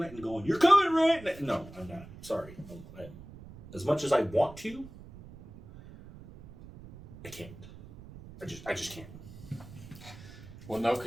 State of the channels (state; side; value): noise; right; rumble, 17 dB below the sound